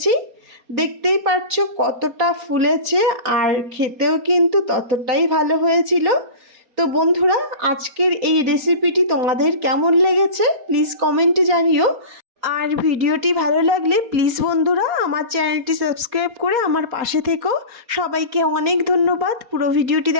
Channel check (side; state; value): left; late; 4.2 ms